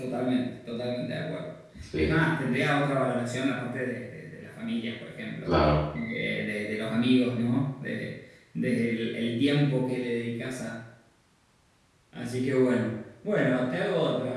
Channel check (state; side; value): identical; both; correlation 1.00